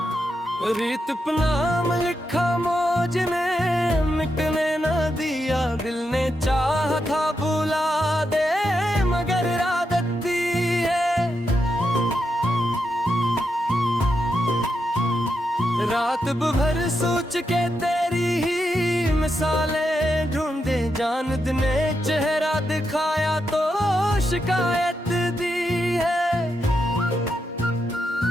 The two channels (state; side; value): normal; both; correlation 0.84